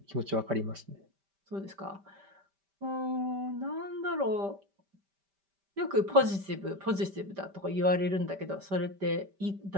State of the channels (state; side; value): late; left; 5.1 ms